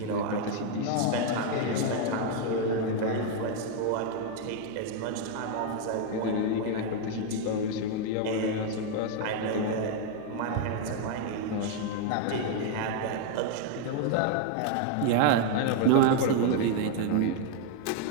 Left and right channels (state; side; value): different; both; correlation 0.00